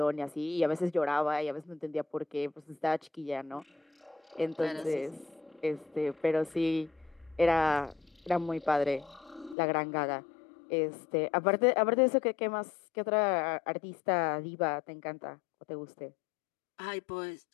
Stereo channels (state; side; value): drops out; right; at 9.6 s